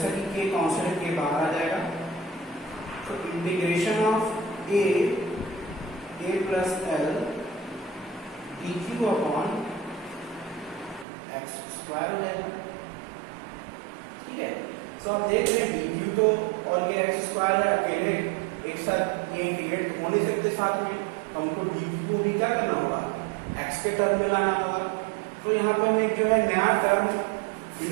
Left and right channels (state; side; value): drops out; left; at 11.1 s